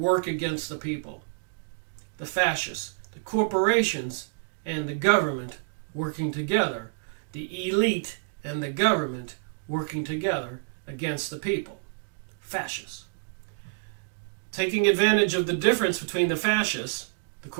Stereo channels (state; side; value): silent; left; digital silence